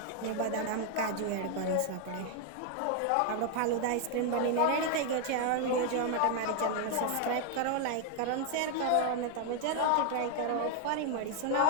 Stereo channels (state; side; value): different; both; correlation 0.00